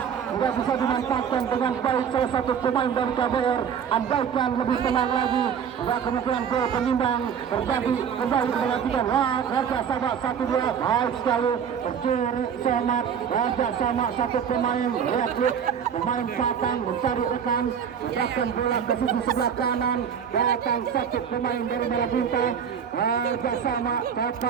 sudah bisa dimanfaatkan dengan baik salah satu pemain dari KBR. Andaikan lebih tenang lagi, ada kemungkinan gol penimbang terjadi kembali menantikan. Kerja sama 1-2, baik sekali, tercuri Somat, kerja sama satu pemain, lihat pemain Batang mencari rekan, menyerahkan bola ke sisi sebelah kanan, datang satu pemain dari Marabunta, kerjasama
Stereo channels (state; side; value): quieter; left; 7.7 dB